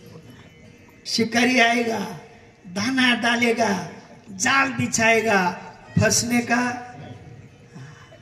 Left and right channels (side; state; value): both; identical; correlation 1.00